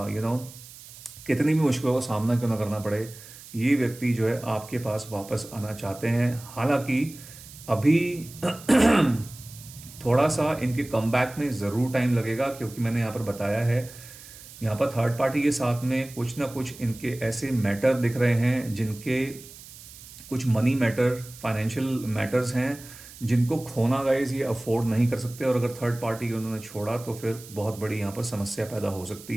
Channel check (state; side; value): noise; right; hiss, 18 dB below the sound